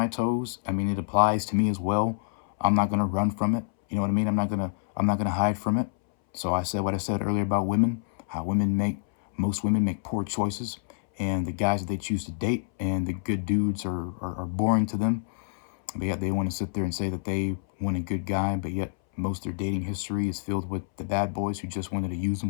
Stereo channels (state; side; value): silent; right; 60 dB below the other